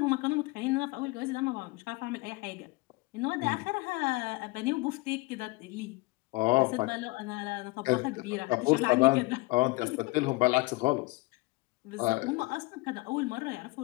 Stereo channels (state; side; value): quieter; right; 23.8 dB